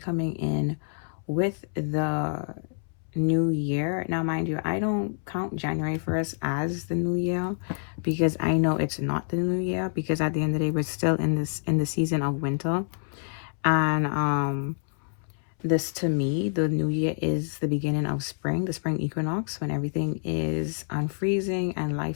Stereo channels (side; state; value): right; silent; 60 dB below the other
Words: in with the new year. Now, mind you, I don't count January 1st as the new year, because I know it's not the new year, because at the end of the day, we're still in the season of winter. And this, to me, the new year is the beginning of spring, the spring equinox, when everything is unfreezing and